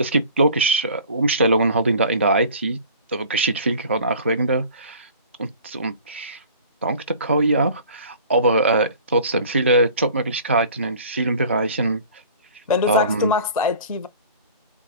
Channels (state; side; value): inverted; both; correlation -0.46